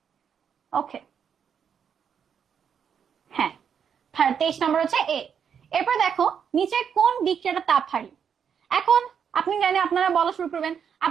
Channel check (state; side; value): quieter; left; 7.5 dB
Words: ওকে, হ্যাঁ। 23 নম্বর হচ্ছে এ। এরপর দেখো, নিচে কোন বিক্রিয়াটা তাপহারী? এখন আপনি জানেন, আপনারা বলা শুরু করবেন,